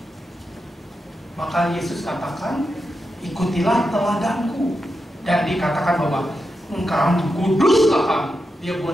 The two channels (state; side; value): normal; both; correlation 0.87